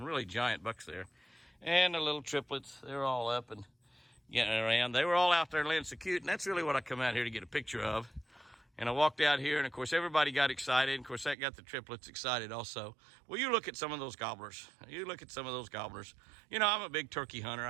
really giant bucks there. And the little triplets, they're all up and getting around. They were all out there laying so cute, and that's really what I come out here to get a picture of. And I walked out here, and of course everybody got excited. Of course that got the triplets excited also. Well, you look at some of those gobblers. You look at some of those gobblers. You know, I'm a big turkey hunter.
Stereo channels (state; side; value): drops out; left; at 11.4 s